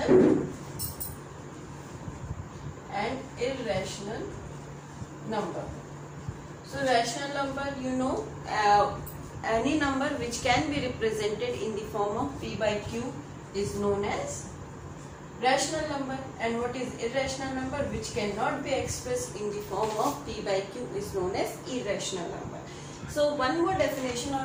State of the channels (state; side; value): identical; both; correlation 1.00